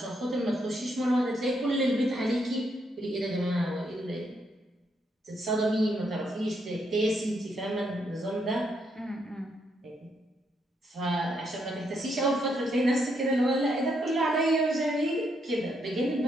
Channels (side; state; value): both; normal; correlation 0.77